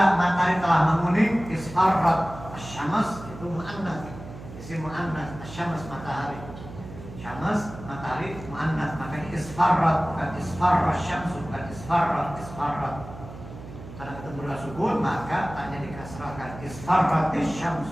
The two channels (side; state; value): right; noise; hum, 14 dB below the sound